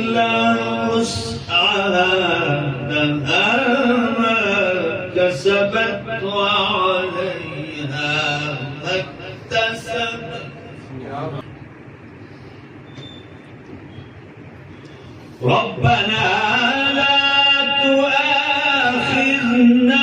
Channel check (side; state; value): both; identical; correlation 1.00